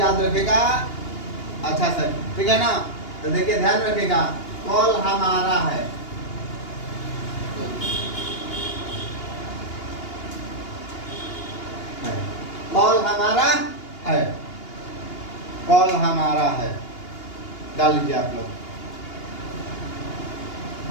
रखेगा अच्छा सर, ठीक है ना। तो देखिए ध्यान रखिएगा, कल हमारा है। कल हमारा है, कल हमारा है, डाल लीजिए आप लोग।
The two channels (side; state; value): right; late; 2.8 ms